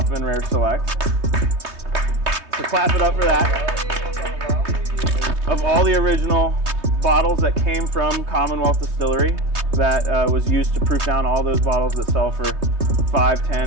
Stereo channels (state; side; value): late; left; 3.2 ms